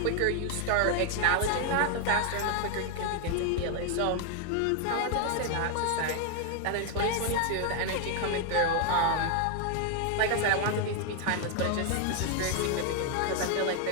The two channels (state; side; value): different; both; correlation 0.01